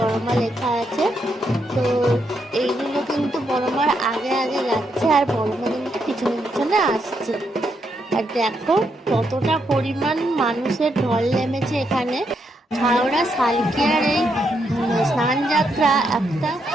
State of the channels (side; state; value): both; normal; correlation 0.79